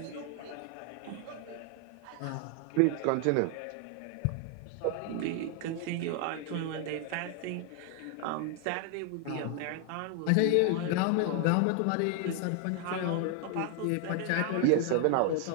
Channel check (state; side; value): different; both; correlation 0.00